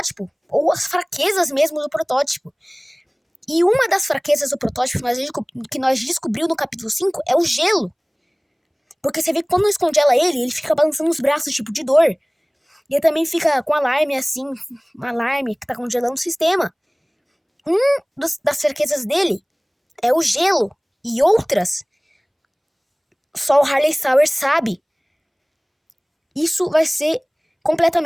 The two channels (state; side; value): identical; both; correlation 1.00